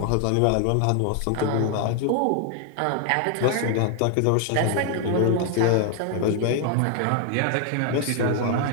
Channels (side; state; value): both; different; correlation 0.00